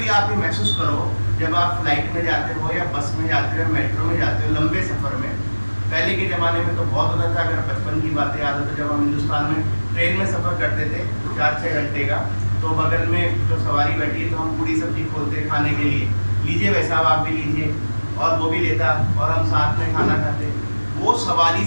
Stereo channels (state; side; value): inverted; both; correlation -1.00